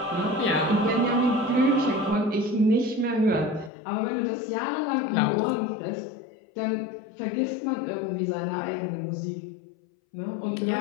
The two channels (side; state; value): right; drops out; at 3.7 s